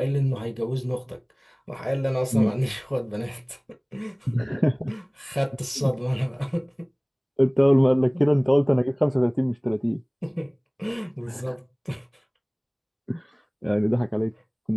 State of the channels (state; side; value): identical; both; correlation 1.00